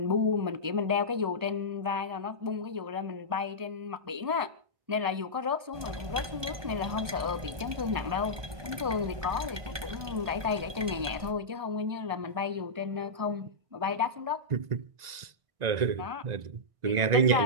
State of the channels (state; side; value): late; left; 1.2 ms